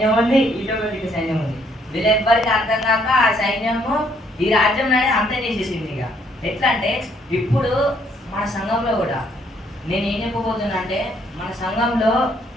ఉంది, ఇటొక దిక్కు సైన్యం ఉంది. వీళ్ళెవ్వరికి అర్థం కాక ఆ సైన్యము ఈ రాజ్యం అనేది అంతే చేసేసింది. ఇక ఎట్లా అంటే ఇప్పుడు మన సంఘంలో కూడా నేను ఏం చెప్పబోతున్నా అంటే, మన సంఘంలో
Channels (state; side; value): normal; both; correlation 0.68